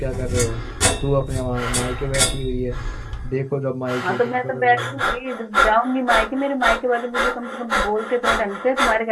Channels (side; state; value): both; identical; correlation 1.00